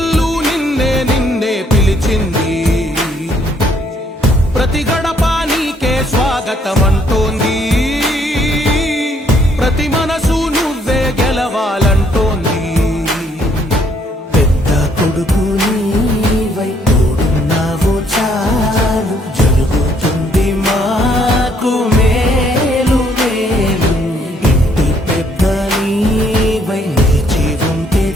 నిన్నే నిన్నే పిలిచింది, ప్రతి గడప నీకే స్వాగతమంటోంది. ప్రతి మన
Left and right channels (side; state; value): both; normal; correlation 0.67